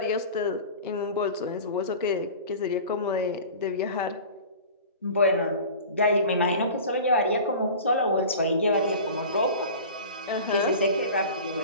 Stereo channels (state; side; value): inverted; both; correlation -0.38